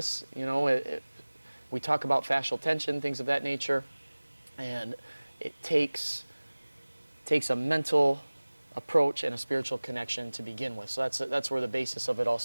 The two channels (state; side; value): inverted; both; correlation -1.00